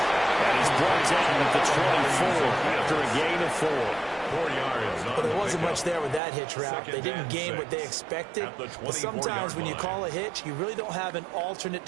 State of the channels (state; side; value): drops out; left; at 6.2 s